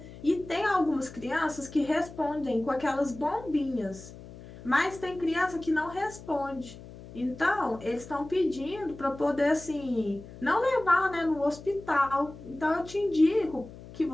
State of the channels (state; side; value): noise; left; hum, 16 dB below the sound